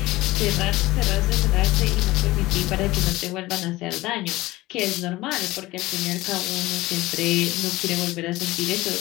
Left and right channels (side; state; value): right; quieter; 18.7 dB